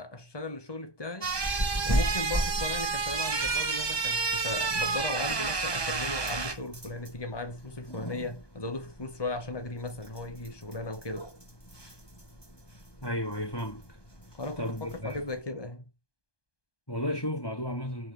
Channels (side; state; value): right; late; 1.2 ms